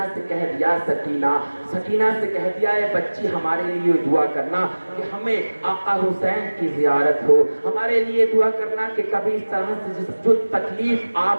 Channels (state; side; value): inverted; both; correlation -1.00